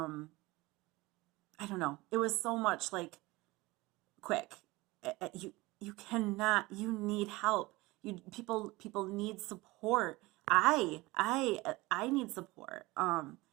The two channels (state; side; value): quieter; left; 21.3 dB